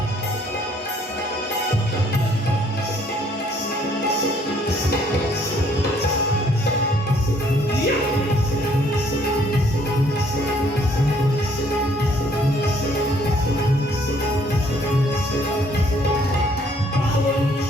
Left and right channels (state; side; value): normal; both; correlation 0.63